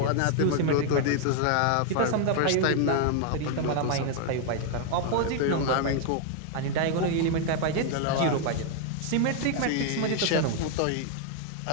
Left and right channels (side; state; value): both; different; correlation 0.00